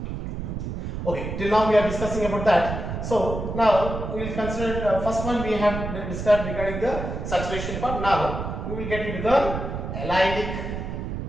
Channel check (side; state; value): right; noise; rumble, 5 dB below the sound